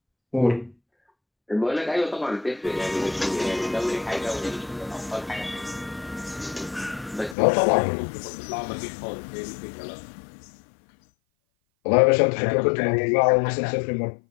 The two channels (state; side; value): drops out; right; at 7.4 s